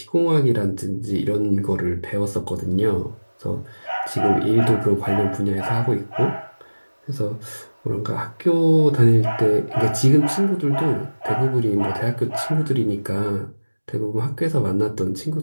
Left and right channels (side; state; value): both; inverted; correlation -1.00